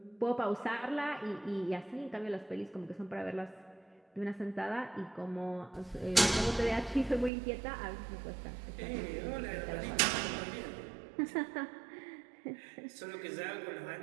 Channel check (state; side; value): drops out; left; at 7.3 s